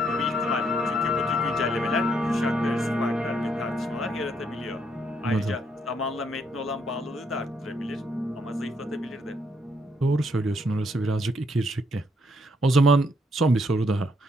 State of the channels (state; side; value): normal; both; correlation 0.73